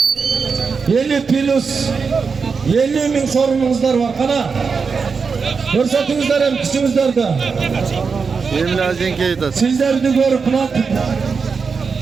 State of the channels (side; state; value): left; quieter; 5.3 dB